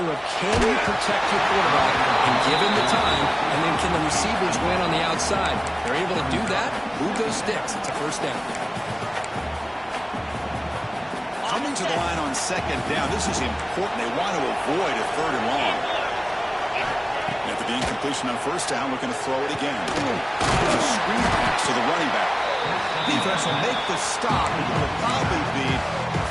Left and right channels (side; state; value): both; identical; correlation 1.00